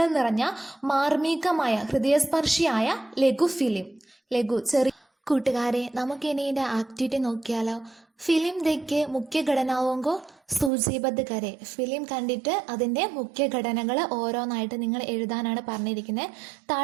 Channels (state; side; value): drops out; left; at 10.7 s